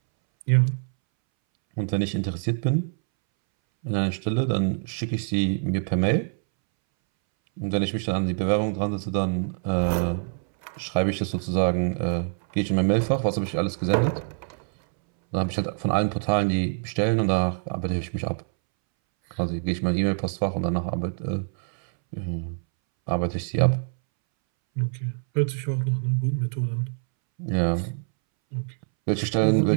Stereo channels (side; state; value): left; silent; 62 dB below the other